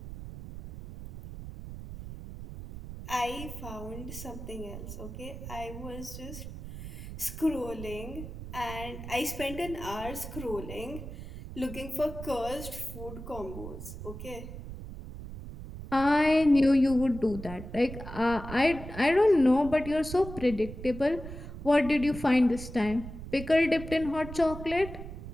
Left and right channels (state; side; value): noise; right; rumble, 11 dB below the sound